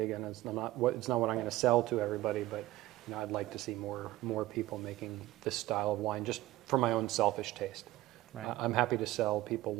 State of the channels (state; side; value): quieter; left; 16.8 dB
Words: it's not what I'm going to sell to everybody, but I'd like to see more people making this style of wine just for my own selfish taste. Right. I'm happy to sell people